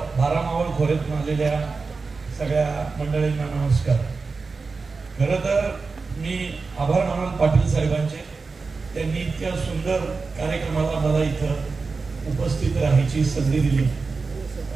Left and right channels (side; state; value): left; quieter; 4.3 dB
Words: मावळ खोऱ्यातून आलेल्या सगळ्या मंडळींना नमस्कार। खरं तर मी आभार मानल पाटील साहेबांचे, त्यांनी इतक्या सुंदर कार्यक्रमाला मला इथं उपस्थित राहायची संधी दिली।